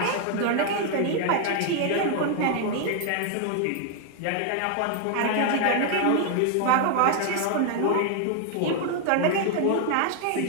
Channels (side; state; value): both; different; correlation 0.00